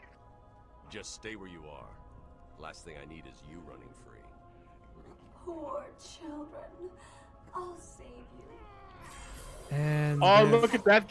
Just stay where you are. Last thing I need is you running free. Poor children. I'll save you. And oh, look at that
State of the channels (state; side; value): identical; both; correlation 1.00